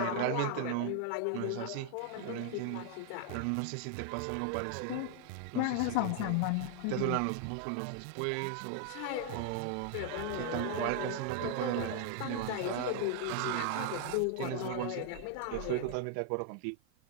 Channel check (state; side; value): different; both; correlation 0.00